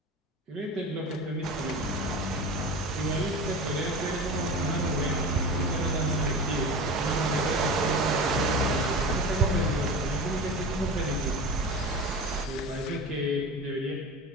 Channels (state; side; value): normal; both; correlation 0.31